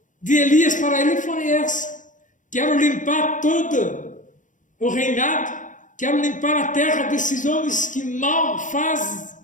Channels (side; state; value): right; late; 0.37 ms